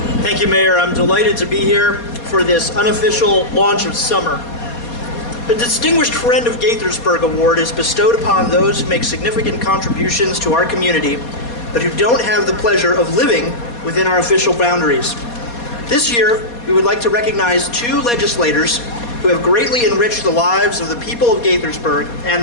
Thank you, Mayor. I'm delighted to be here for this unofficial launch of summer. The Distinguished Friend of Gaithersburg Award is bestowed upon those who make significant contributions to our community, but who don't have the pleasure of living within our official boundaries. This year, we would like to recognize 2 legislators who have greatly enriched the lives of the people of Gaithersburg and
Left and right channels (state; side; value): late; right; 4.2 ms